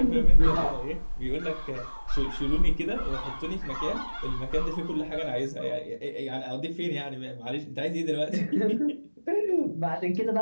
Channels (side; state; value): both; inverted; correlation -1.00